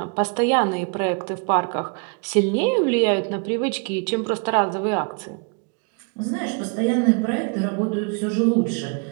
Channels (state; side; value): quieter; left; 36.4 dB